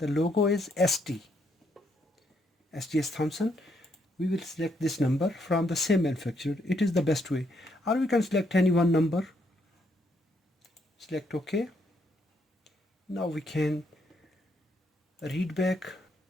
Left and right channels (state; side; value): normal; both; correlation 0.74